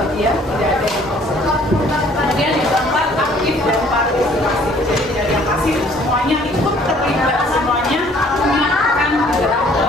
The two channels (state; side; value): normal; both; correlation 0.58